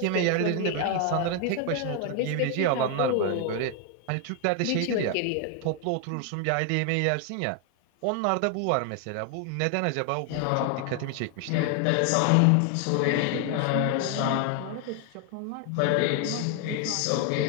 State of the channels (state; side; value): different; both; correlation 0.00